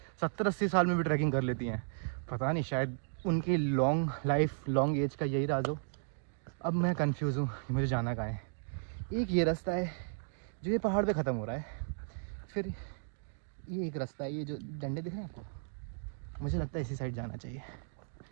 70-80 साल में भी ट्रैकिंग कर लेती हैं। पता नहीं, शायद उनकी लॉन्ग लाइफ लॉन्ग एज का यही राज हो। अब मैं कंफ्यूज हूँ कि मुझे जाना कहाँ है। एक ये रास्ता है जो ये पहाड़ पे ख़त्म हो रहा है, फिर ये एक रास्ता है, ये जो डंडे दिख रहे हैं आपको, मुझे लगता है इसी साइड जाना चाहिए,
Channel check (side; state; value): left; silent; digital silence